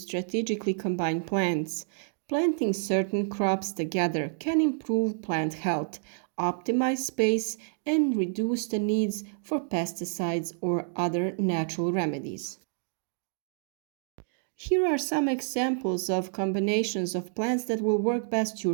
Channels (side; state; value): left; silent; digital silence